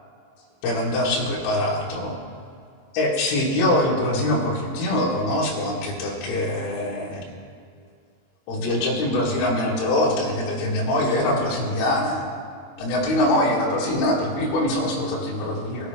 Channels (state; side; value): late; right; 22 ms